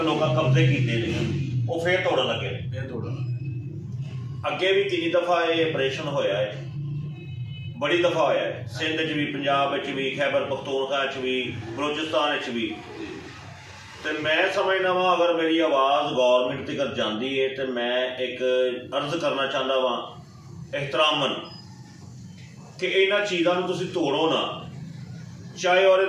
ਲੋਕਾਂ ਕਬਜ਼ੇ ਕੀਤੇ ਨੇ ਉਹ ਫੇਰ ਤੋੜਨ ਲੱਗੇ ਨੇ ਫੇਰ ਤੋੜਨ ਅੱਗੇ ਵੀ ਕਿੰਨੀ ਦਫਾ ਇਹ ਆਪਰੇਸ਼ਨ ਹੋਇਆ ਹੈ ਬੜੀ ਦਫਾ ਹੋਇਆ ਹੈ ਸਿੰਧ 'ਚ ਵੀ ਪੰਜਾਬ ਵਿੱਚ ਵੀ ਖੈਬਰ ਪਖਤੂਨਖਵਾ 'ਚ ਵੀ ਬਲੋਚਿਸਤਾਨ 'ਚ ਵੀ तो मैं समझना वा अगर मेरी आवाज़ गौरमेंट तक जाती है तो मैं एक अर्ज करना चाहता वा एहतरामन कि इन्होंने चीज़ों को तुसीं तोड़ो ना चाहे और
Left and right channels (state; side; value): identical; both; correlation 1.00